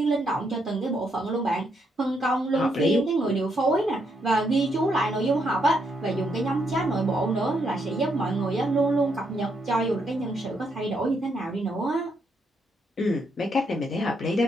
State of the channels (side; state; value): both; normal; correlation 0.76